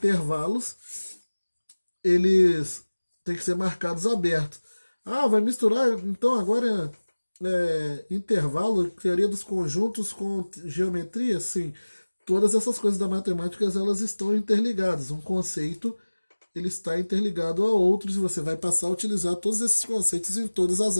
eles têm que ser marcados abertos. Ah, vai misturar, então agora intervalo, teoria dos conjuntos com geometria? Sim. Todas essas coisas da matemática, elas estão interligadas. Um conceito, ele está interligado a outros e você vai passar a utilizar todos esses conceitos em todas as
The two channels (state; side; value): inverted; both; correlation -1.00